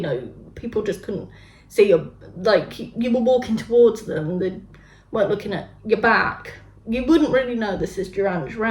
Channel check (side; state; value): both; identical; correlation 1.00